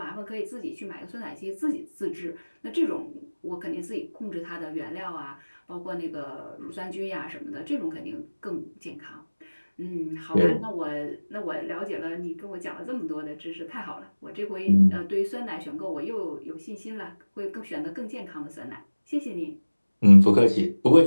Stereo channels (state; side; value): inverted; both; correlation -1.00